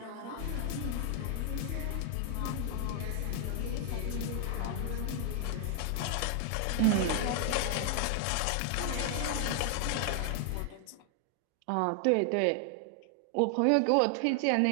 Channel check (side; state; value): both; different; correlation 0.00